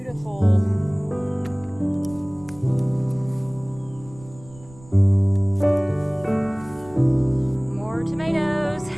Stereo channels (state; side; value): noise; right; rumble, 22 dB below the sound